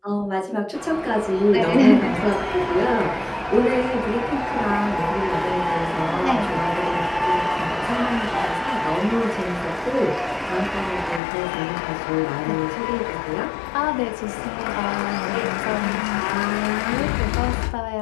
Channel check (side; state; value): right; drops out; at 11.2 s